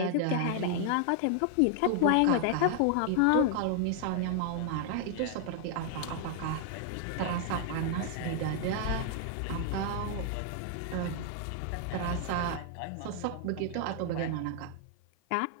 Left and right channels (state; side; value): different; both; correlation 0.00